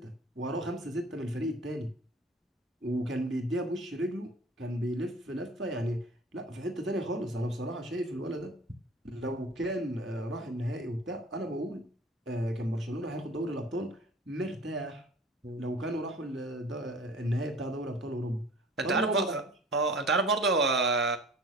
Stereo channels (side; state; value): both; normal; correlation 0.45